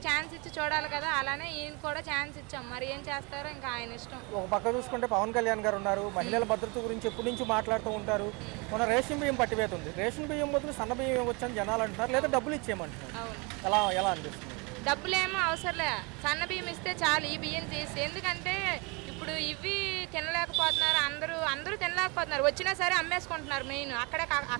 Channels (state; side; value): quieter; left; 29.4 dB